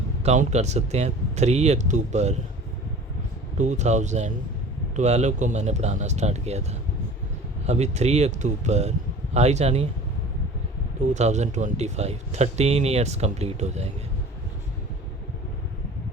काउंट कर सकते हैं, 3 अक्टूबर 2012 को मैंने पढ़ाना स्टार्ट किया था। अभी 3 अक्टूबर आई जानिए 2025, 13 ईयर्स कंप्लीट हो जाएंगे।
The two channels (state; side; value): normal; both; correlation 0.42